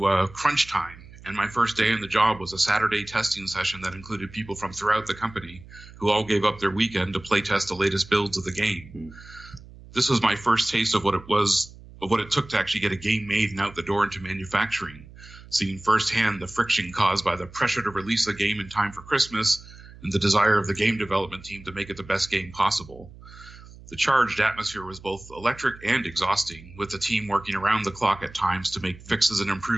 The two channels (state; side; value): noise; right; hum, 19 dB below the sound